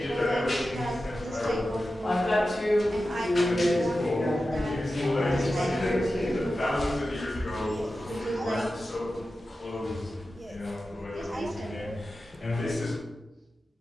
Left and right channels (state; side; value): normal; both; correlation 0.93